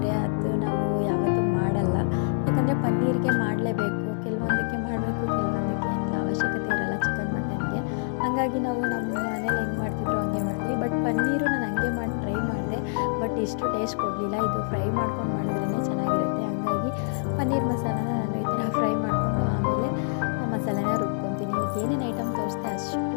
ಅದು ನಾವು ಯಾವತ್ತೂ ಮಾಡಲ್ಲ. ಯಾಕಂದರೆ ಪನ್ನೀರಿಗೆ ಮಾಡಲೇಬೇಕು, ಕೆಲವೊಂದಕ್ಕೆ ಮಾಡಬೇಕು, ಕೆಲವೊಂದಕ್ಕೆ ಏನಿಲ್ಲ, ಅವಶ್ಯಕತೆ ಇರಲ್ಲ ಚಿಕನ್ ಮಟನ್ಗೆ. ಹಾಗಾಗಿ ನಾವು ನಮ್ಮ ಮನೇಲಿ ಹೆಂಗೆ ಮಾಡ್ತಿದ್ರು ಹಂಗೆ ಮಾಡ್ತೀವಿ. ಬಟ್ ಪನ್ನೀರು ನಾನು ಹಂಗೆ ಮಾಡಿ ಟ್ರೈ ಮಾಡಿದೆ, ಬಟ್ ಇಷ್ಟು ಟೇಸ್ಟ್ ಕೊಡಲಿಲ್ಲ. ಇದು ಫ್ರೈ ಮಾಡ್ಕೊಂಡು ಮಾಡಿದ್ರೇ ಚೆನ್ನಾಗಿರುತ್ತೆ. ಹಾಗಾಗಿ ಪನ್ನೀರ್ ಮಸಾಲಾನ ನಾನು ಈ ಥರ ಫ್ರೈ ಮಾಡಿಕೊಂಡು ಆಮೇಲೆ ಮಸಾಲೆನ ರುಬ್ಕೊತೀನಿ. ಏನೇನು ಐಟಮ್ ತೋರಿಸ್ತೆ ಅಷ್ಟು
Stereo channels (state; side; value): silent; right; 61 dB below the other